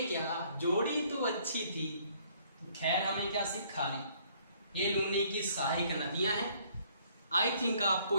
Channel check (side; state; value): both; inverted; correlation -0.62